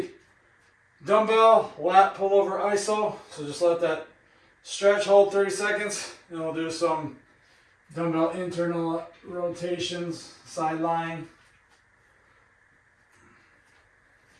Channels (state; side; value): identical; both; correlation 1.00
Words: Dumbbell lat pull over iso. So just let that stretch, hold 30 seconds, and we'll do some dumbbell internal rotations, sideline.